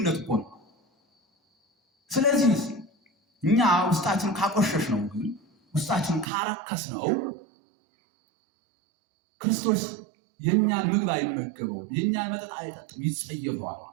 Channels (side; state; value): left; drops out; at 6.2 s